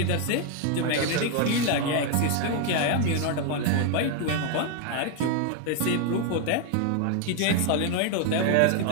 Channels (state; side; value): different; both; correlation 0.01